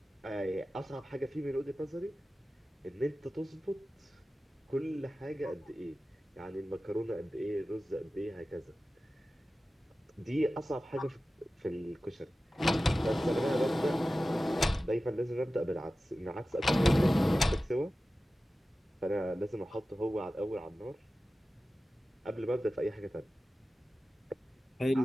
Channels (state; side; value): normal; both; correlation 0.95